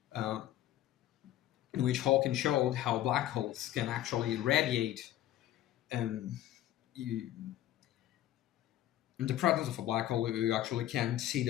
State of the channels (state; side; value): quieter; right; 13.2 dB